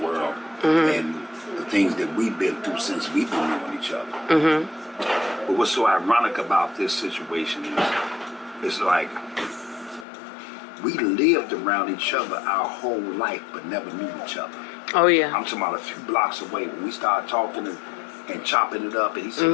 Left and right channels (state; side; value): drops out; right; at 10.1 s